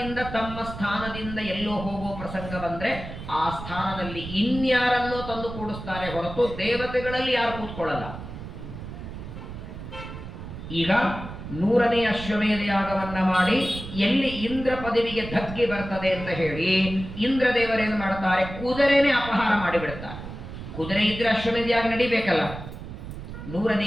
ತಮ್ಮ ಸ್ಥಾನದಿಂದ ಎಲ್ಲೋ ಹೋಗುವ ಪ್ರಸಂಗ ಬಂದ್ರೆ ಆ ಸ್ಥಾನದಲ್ಲಿ ಇನ್ಯಾರನ್ನೋ ತಂದು ಕೂಡಿಸ್ತಾರೆ ಹೊರತು ದೇವತೆಗಳಲ್ಲಿ ಯಾರು ಕೂತ್ಕೊಳ್ಳಲ್ಲ. ಈಗ 100ನೇ ಅಶ್ವಮೇಧ ಯಾಗವನ್ನ ಮಾಡಿ ಎಲ್ಲಿ ಇಂದ್ರ ಪದವಿಗೆ ಧಕ್ಕೆ ಬರ್ತದೆ ಅಂತ ಹೇಳಿ ಇಂದ್ರದೇವರೇನು ಮಾಡ್ತಾರೆ, ಕುದುರೆನೇ ಅಪಹಾರ ಮಾಡಿಬಿಡ್ತಾರೆ. ಕುದುರೆ ಇದ್ರೆ ಅಶ್ವಮೇಧ ಯಾಗ ನಡಿಬೇಕಲ್ಲ. 100ನೇ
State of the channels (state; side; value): noise; right; rumble, 10 dB below the sound